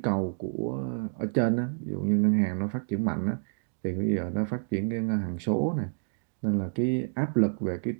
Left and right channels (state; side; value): silent; left; digital silence